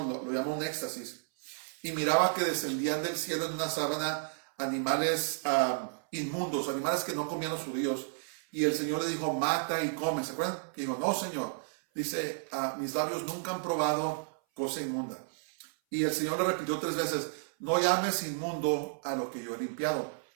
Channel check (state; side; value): silent; left; 56 dB below the other